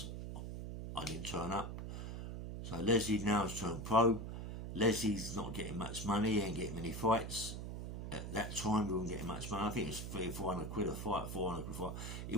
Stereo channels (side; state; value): right; noise; hum, 6 dB below the sound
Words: I didn't turn up. So Leslie now has turned pro. Leslie's not getting much money, he ain't getting many fights. At that time, we weren't getting much money. I think it was 300 or 400 quid a fight, 400 quid a fight. He